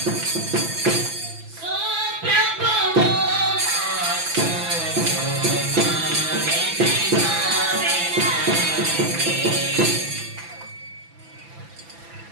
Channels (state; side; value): late; left; 6.0 ms